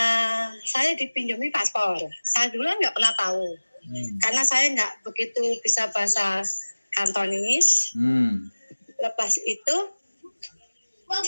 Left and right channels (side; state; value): both; inverted; correlation -1.00